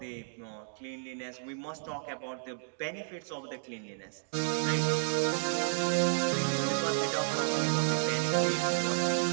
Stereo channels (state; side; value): silent; left; digital silence